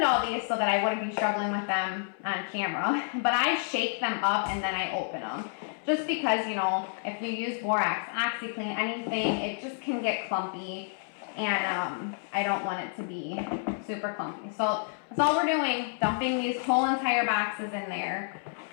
all these so that I wouldn't be struggling with them on camera, but I shake them up and then I open them. Just because, you know, if you use borax, OxyClean, anything, it just can get clumpy, and I don't want it to be super clumpy. So that's all we're doing, dumping these whole entire boxes in there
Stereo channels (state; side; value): silent; right; 58 dB below the other